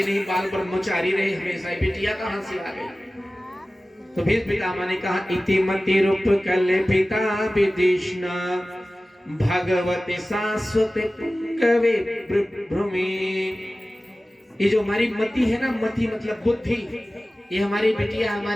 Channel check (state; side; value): normal; both; correlation 0.96